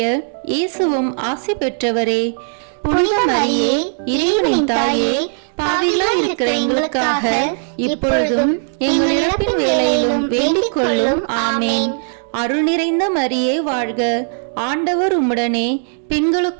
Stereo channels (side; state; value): left; silent; digital silence